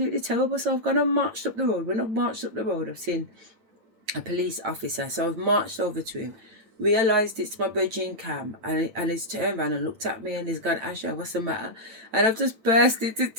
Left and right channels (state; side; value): late; left; 9.0 ms